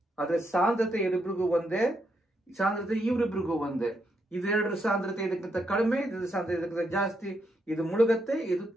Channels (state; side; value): normal; both; correlation 0.79